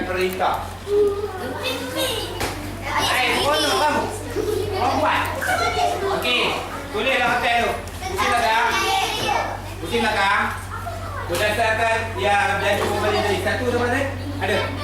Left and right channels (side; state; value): both; identical; correlation 1.00